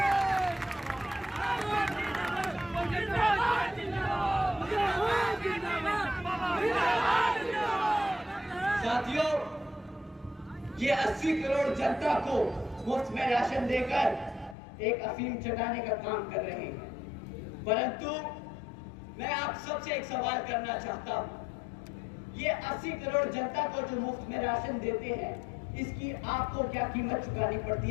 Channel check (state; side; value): drops out; right; at 14.6 s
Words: साथियों, ये 80 करोड़ जनता को मुफ्त में राशन देकर एक अफीम चटाने का काम कर रहे हैं। परंतु मैं आप सबसे एक सवाल करना चाहता हूं, ये 80 करोड़ जनता को जो मुफ्त में राशन देते हैं, इसकी आपको क्या कीमत चुकानी पड़ती